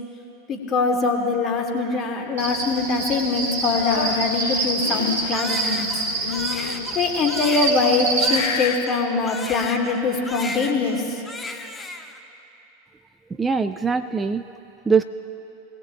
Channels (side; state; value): both; normal; correlation 0.23